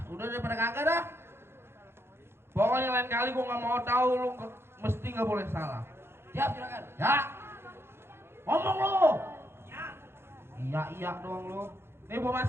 Udah daripada kagak dah. Pokoknya lain kali gua nggak mau tahu lu mesti nggak boleh salah. Siap juragan. Ya. Ngomong lu. Iya doang lu. Nih gua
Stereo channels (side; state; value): left; late; 0.12 ms